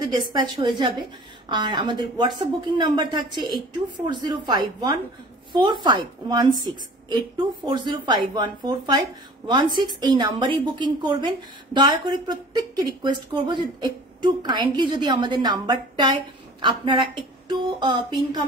ডিসপ্যাচ হয়ে যাবে। আর আমাদের হোয়াটসঅ্যাপ বুকিং নাম্বার থাকছে 8240514516 8240514516। এই নাম্বারেই বুকিং করবেন। দয়া করে প্রত্যেককে রিকোয়েস্ট করবো যে একটু কাইন্ডলি যদি আমাদের নাম্বারটায় আপনারা একটু পিন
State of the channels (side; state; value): both; normal; correlation 0.45